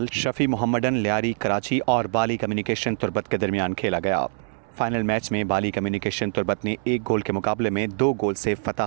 Shafi Mohammedan Lyari Karachi और बाली communication Turbat के दरमियान खेला गया। फाइनल मैच में बाली कम्युनिकेशन तुर्बत ने 1 गोल के मुकाबले में 2 गोल से फतह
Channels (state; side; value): silent; left; 61 dB below the other